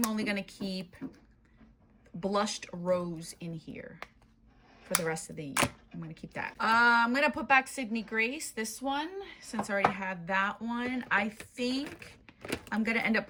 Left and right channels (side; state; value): both; identical; correlation 1.00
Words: only gonna keep Blushed Rose in here for the rest of the year. I'm gonna keep that. I'm gonna put back Sydney Grace, this one, since I already had that one. I think I'm gonna end up